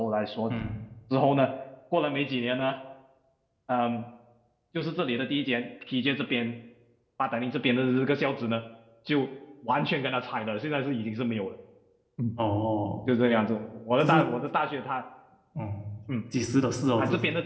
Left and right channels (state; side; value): identical; both; correlation 1.00